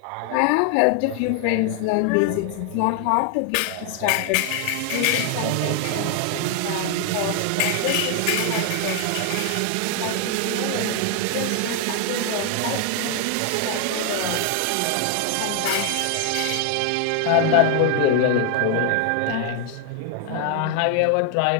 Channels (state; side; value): different; both; correlation 0.00